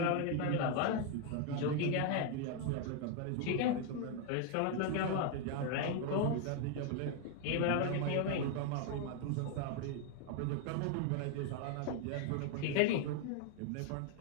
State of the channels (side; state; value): both; different; correlation 0.00